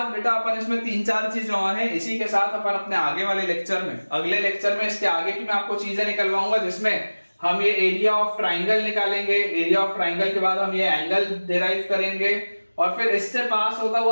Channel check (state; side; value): inverted; both; correlation -1.00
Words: बेटा अपन इसमें 3-4 चीजें और हैं, इसी के साथ अपन अपने आगे वाले लेक्चर में, अगले लेक्चर में इसके आगे की मैं आपको चीजें निकलवाऊंगा, जिसमें हम ये एरिया ऑफ ट्राइंगल निकालेंगे, एरिया ऑफ ट्राइंगल के बाद हम ये एंगल डिराइव करेंगे, और फिर इससे पास होता